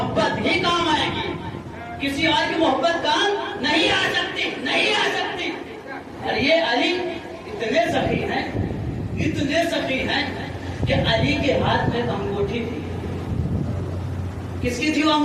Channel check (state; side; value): identical; both; correlation 1.00